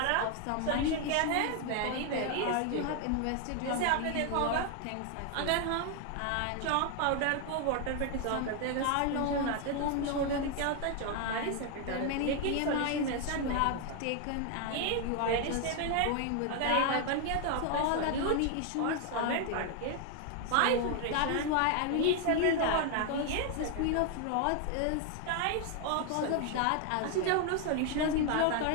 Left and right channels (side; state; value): both; different; correlation 0.00